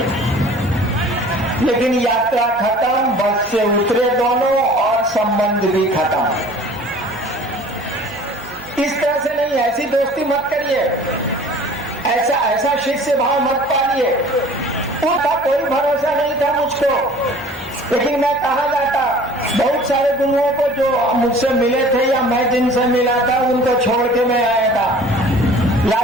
लेकिन यात्रा खत्म, बस से उतरे दोनों और संबंध भी खत्म। इस तरह से नहीं, ऐसी दोस्ती मत करिए, ऐसा शिष्य भाव मत पालिए। उनका कोई भरोसा नहीं था मुझको, लेकिन मैं कहा जाता, बहुत सारे गुरुओं को जो मुझसे मिले थे या मैं जिनसे मिला था उनको छोड़ के मैं आया था।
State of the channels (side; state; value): both; normal; correlation 0.47